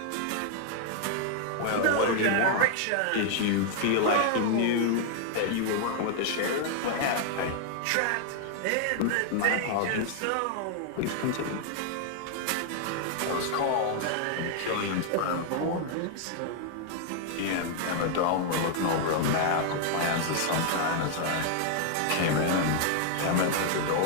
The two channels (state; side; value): different; both; correlation 0.00